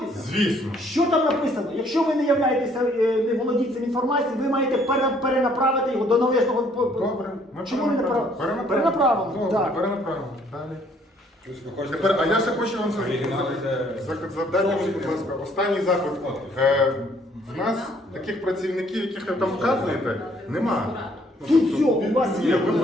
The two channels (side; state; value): both; normal; correlation 0.63